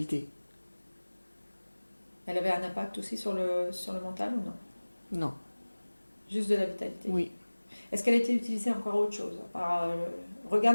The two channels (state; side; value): inverted; both; correlation -1.00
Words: Elle avait un impact aussi sur le mental ou non? Non. Juste de la vitalité. Oui. Est-ce qu'elle a été utilisée encore autre chose?